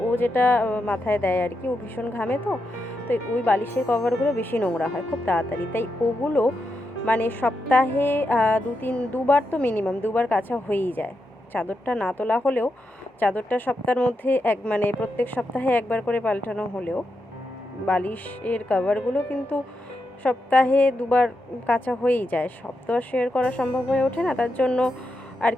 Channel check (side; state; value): both; normal; correlation 0.85